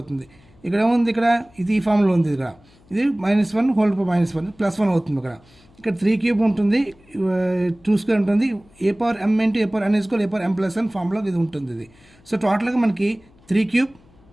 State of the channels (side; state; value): left; noise; hum, 29 dB below the sound